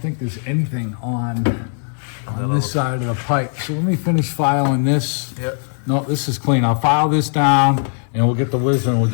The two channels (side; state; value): right; silent; 67 dB below the other